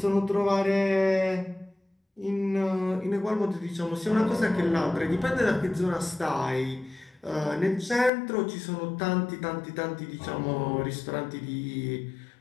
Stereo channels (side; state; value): right; drops out; at 8.1 s